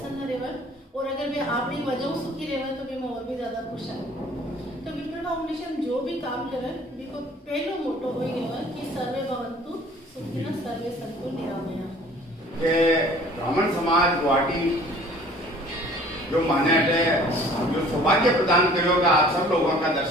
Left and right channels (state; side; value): normal; both; correlation 0.52